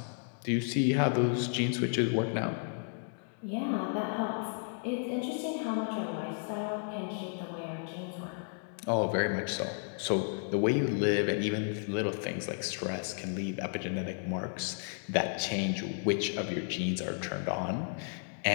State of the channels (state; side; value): silent; right; 56 dB below the other